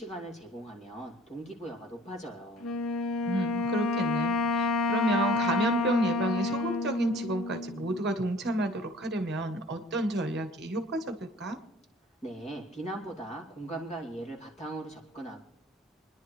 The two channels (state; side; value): normal; both; correlation 0.50